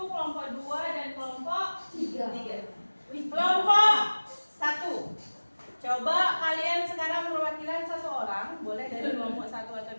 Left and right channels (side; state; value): both; inverted; correlation -1.00